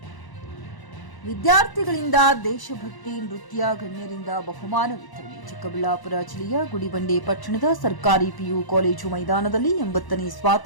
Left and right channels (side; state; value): right; late; 1.0 ms